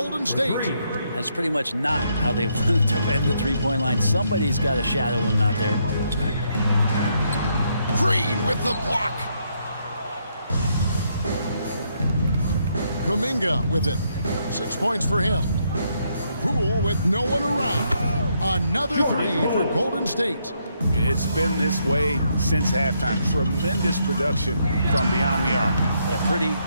State. That's pretty much not how they wanted to end the three-point line. Somebody's got to shadow him out there. Green with the block. Kuminga with it. 6 points for him. Poole with no one around. Another 3 for Golden State. It's been this way since halftime. Tremendous production from beyond the arc. They're pretty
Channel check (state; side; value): inverted; both; correlation -0.75